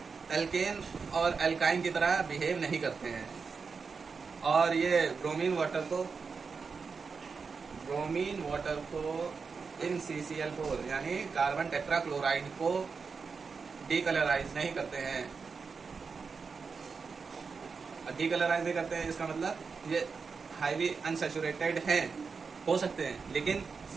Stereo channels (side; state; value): left; quieter; 5.2 dB